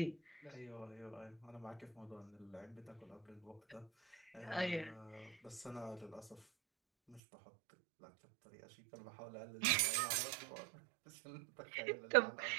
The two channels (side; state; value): left; drops out; at 7.2 s